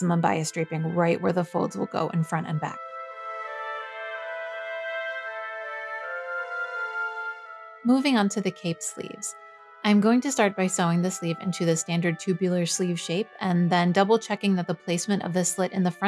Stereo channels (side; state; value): both; identical; correlation 1.00